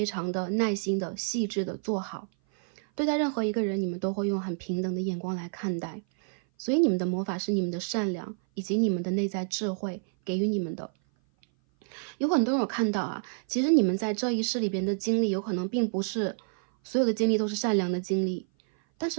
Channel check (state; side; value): silent; left; 57 dB below the other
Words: 常的耐心的、细致的做好。对待任何一个人，你们都会用很平等的眼光来看待。所以你们的魔法是你们的善良，以及你们的内在智慧给予你们的。有很多人有看到啊，其实你们在这一世里边的经历，有可能并不是所有的经历都是善良的经历。但